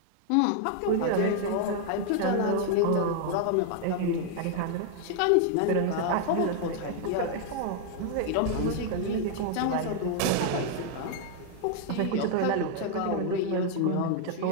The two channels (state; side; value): different; both; correlation 0.00